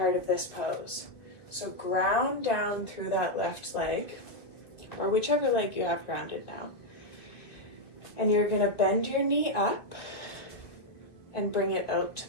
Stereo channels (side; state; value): right; late; 2.1 ms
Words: of this pose. So ground down through that left leg, or whichever leg you have grounded now. And you're going to bend your knee up and bring it out to